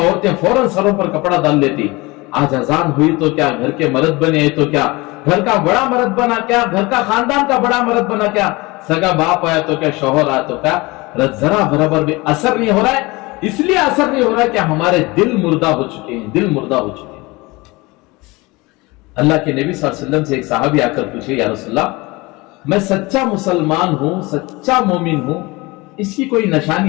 फौरन सरों पर कपड़ा डाल लेती। आज अजान हुई तो क्या घर के मर्द बने हैं तो क्या, घर का बड़ा मर्द बना क्या, घर का खानदान का बड़ा मर्द बना क्या, सगा बाप आया तो क्या, शौहर आया तो क्या, जरा बराबर भी असर नहीं हो रहा है। इसलिए असर नहीं हो रहा है कि हमारे दिल मुर्दा हो चुके हैं, दिल मुर्दा हो चुके हैं। अल्लाह के नबी सल्लल्लाहु अलैहि वसल्लम से एक सहाबी आकर पूछे, या रसूलल्लाह, मैं सच्चा मुसलमान हूं, सच्चा मोमिन हूं, इसकी कोई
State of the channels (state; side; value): quieter; right; 23.3 dB